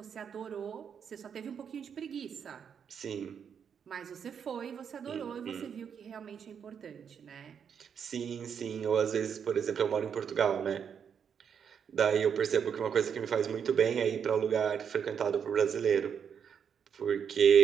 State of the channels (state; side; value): quieter; left; 7.4 dB